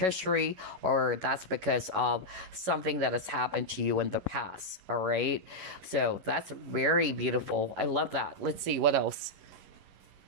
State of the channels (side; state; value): left; late; 11 ms